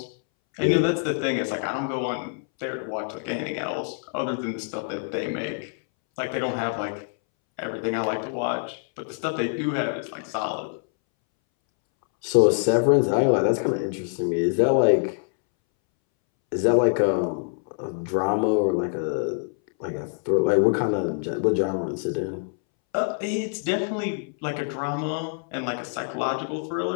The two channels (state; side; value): silent; right; 62 dB below the other